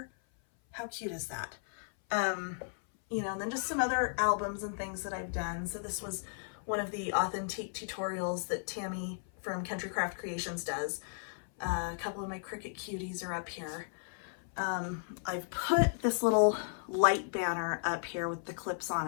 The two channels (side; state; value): right; silent; 55 dB below the other